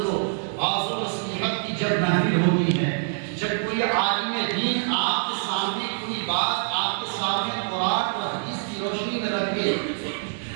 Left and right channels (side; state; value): left; silent; digital silence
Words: واعظ و نصیحت کی جب محفل ہوتی ہے، جب کوئی عالم دین آپ کے سامنے کوئی بات آپ کے سامنے قرآن اور حدیث کی روشنی میں رکھے